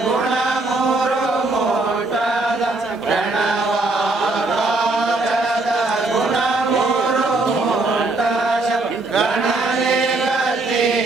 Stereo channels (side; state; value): left; quieter; 3.1 dB